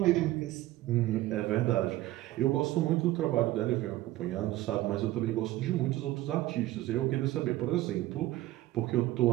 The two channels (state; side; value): quieter; left; 16.3 dB